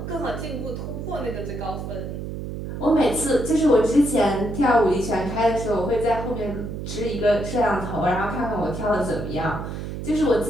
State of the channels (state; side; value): noise; right; hum, 6 dB below the sound